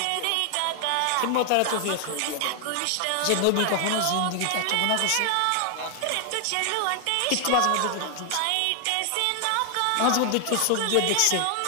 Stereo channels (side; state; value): both; different; correlation 0.00